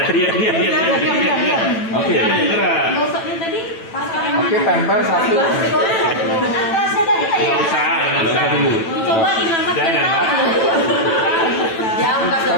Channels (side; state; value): right; late; 9.0 ms